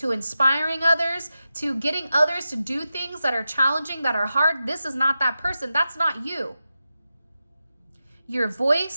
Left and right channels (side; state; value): both; inverted; correlation -0.91